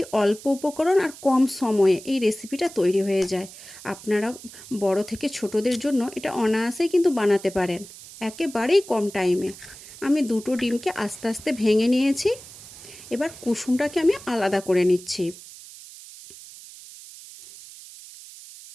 অল্প উপকরণ আর কম সময়ে এই রেসিপিটা তৈরি হয়ে যায়। আপনারা বড় থেকে ছোটদের জন্য এটা অনায়াসেই কিন্তু বানাতে পারেন, একেবারেই কম টাইমে। আমি দুটো ডিমকে আস্তে আস্তে ভেঙে নিয়েছি। এবার কুসুমটাকে আমি আলাদা করে নিচ্ছি।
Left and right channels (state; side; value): noise; right; hiss, 17 dB below the sound